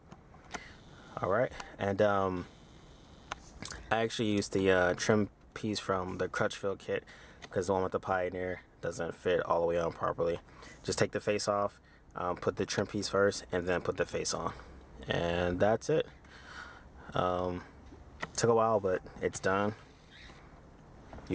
All right, and I actually used the trim piece from the Crutchfield kit, because the one with the Pioneer doesn't fit all the way on properly. Just take the face off, put the trim piece first, and then put the face on, and that's it. Took a while, but it's done.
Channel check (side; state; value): both; identical; correlation 1.00